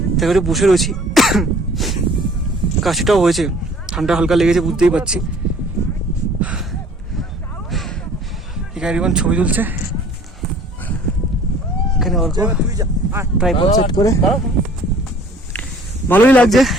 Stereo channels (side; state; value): both; normal; correlation 0.52